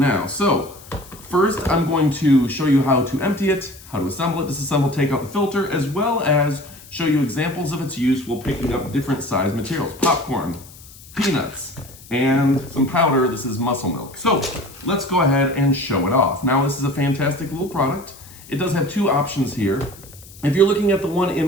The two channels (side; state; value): left; noise; hiss, 20 dB below the sound